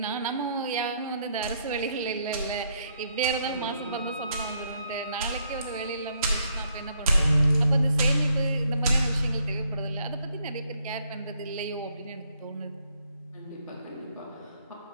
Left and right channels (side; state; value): both; inverted; correlation -0.72